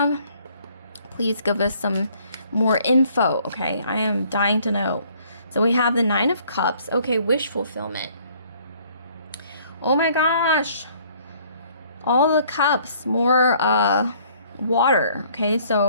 Please give us some more info, okay? I am dying to know. So we have the Nine of Cups. Okay, wish fulfillment. Oh my gosh. All the cups. More water. Okay,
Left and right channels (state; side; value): inverted; both; correlation -0.60